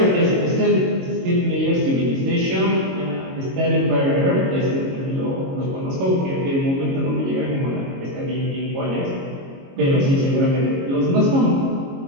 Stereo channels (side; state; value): left; late; 22 ms